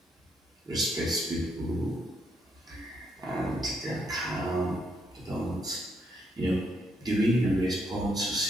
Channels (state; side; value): normal; both; correlation 0.76